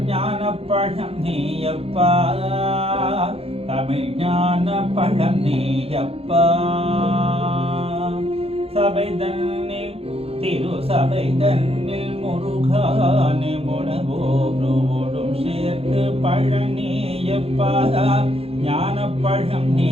ஞானப்பழம் நீயப்பா தமிழ் ஞான பழம் நீயப்பா சபை தன்னில் திரு சபை தன்னில் முருகானே முனவோடும் சேர்த்து பழனியப்பா ஞான பழம்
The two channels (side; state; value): left; late; 0.29 ms